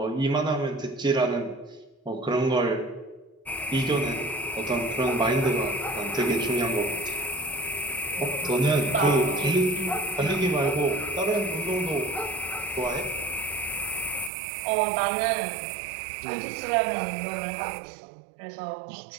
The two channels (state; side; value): drops out; left; at 14.3 s